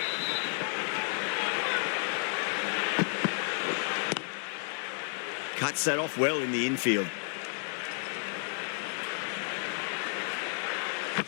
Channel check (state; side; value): silent; right; 57 dB below the other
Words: Cuts that off well in the infield.